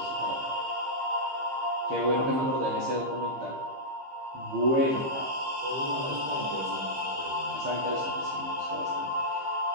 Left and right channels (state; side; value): late; left; 15 ms